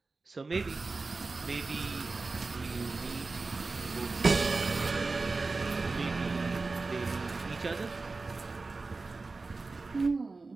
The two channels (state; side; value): quieter; left; 3.8 dB